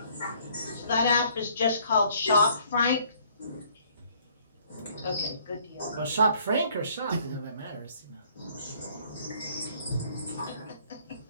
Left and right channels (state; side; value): inverted; both; correlation -0.61